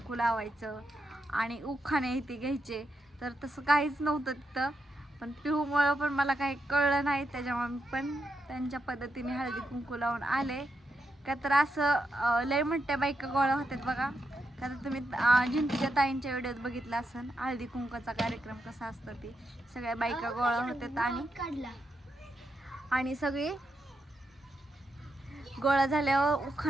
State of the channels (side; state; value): both; normal; correlation 0.84